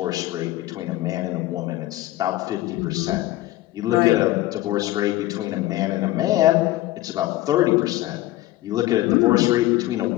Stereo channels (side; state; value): right; quieter; 16.4 dB